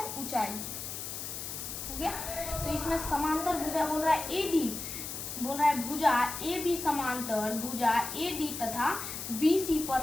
ऊंचाई हो गया। तो इसमें समांतर भुजा बोल रहा है AD, बोल रहा है भुजा AB समांतर भुजा AD तथा BC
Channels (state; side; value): noise; left; hiss, 7 dB below the sound